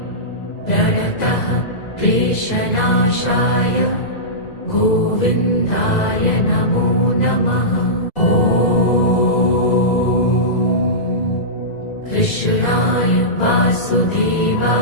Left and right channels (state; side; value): late; right; 2.0 ms